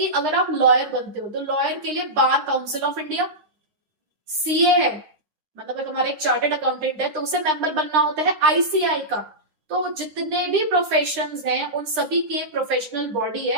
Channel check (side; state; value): left; late; 9.8 ms